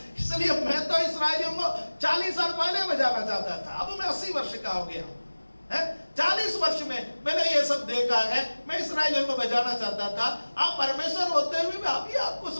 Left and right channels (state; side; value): inverted; both; correlation -1.00